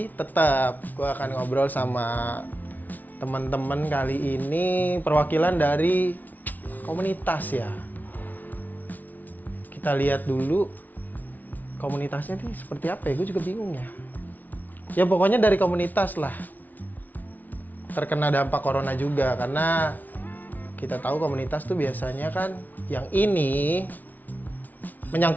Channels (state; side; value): late; right; 0.080 ms